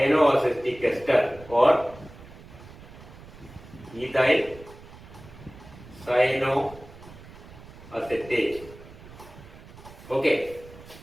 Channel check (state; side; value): noise; right; rumble, 18 dB below the sound